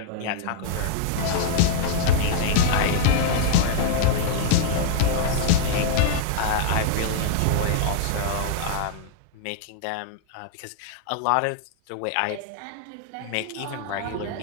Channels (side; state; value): both; different; correlation -0.01